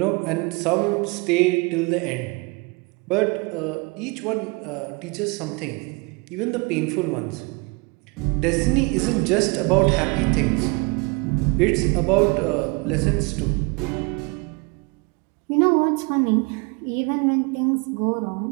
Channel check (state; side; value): quieter; left; 29.1 dB